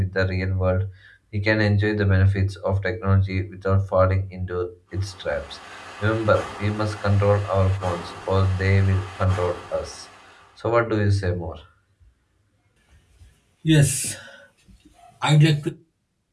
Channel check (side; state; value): both; identical; correlation 1.00